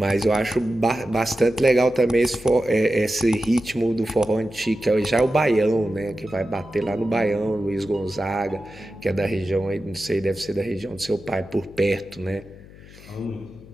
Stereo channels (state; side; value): noise; left; hum, 20 dB below the sound